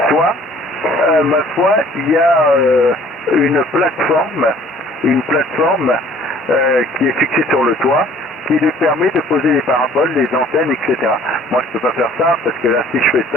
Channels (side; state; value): both; normal; correlation 0.54